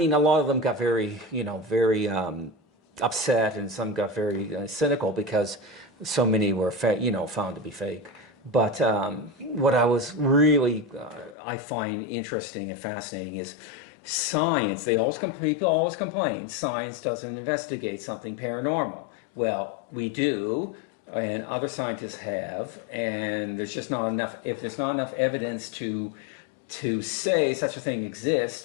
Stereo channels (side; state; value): right; drops out; at 11.4 s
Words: a lot of them got very upset, and some got very cynical because so many were found to be fake. But what I was really I find interesting and fascinating is science. People always complain science doesn't investigate something paranormal. Well, we do, and other scientists have, and there's just not enough. If there's not enough evidence to say such a thing